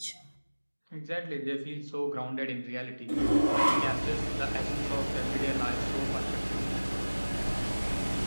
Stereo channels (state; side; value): inverted; both; correlation -1.00